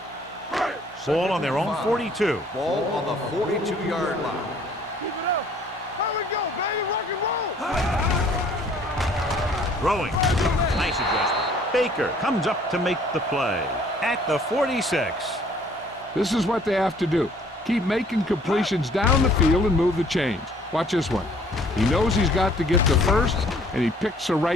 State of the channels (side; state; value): both; normal; correlation 0.58